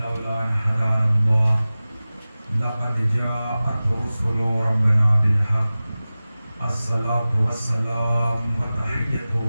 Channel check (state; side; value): inverted; both; correlation -0.97